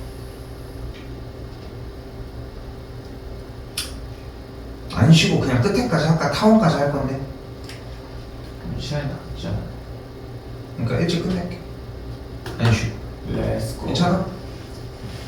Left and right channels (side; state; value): both; identical; correlation 1.00